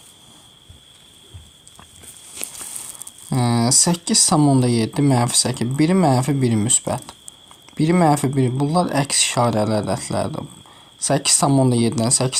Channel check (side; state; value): both; identical; correlation 1.00